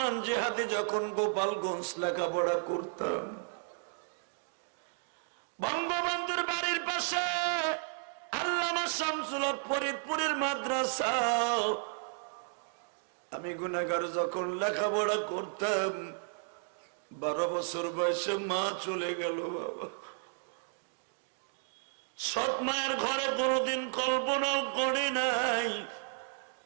জিহাদি যখন গোপালগঞ্জ লেখাপড়া করতাম, বঙ্গবন্ধুর বাড়ির পাশে আল্লামা শামসুল হক ফরিদপুরের মাদ্রাসা, আমি গুনাহগার যখন লেখাপড়া করতাম, 12 বছর বয়সে মা চলে গেল বাবা। সৎ মায়ের ঘরে কোনোদিন কল্পনাও করি নাই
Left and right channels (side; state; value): left; silent; digital silence